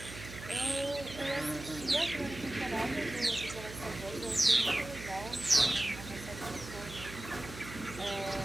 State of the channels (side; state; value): right; noise; hum, 12 dB below the sound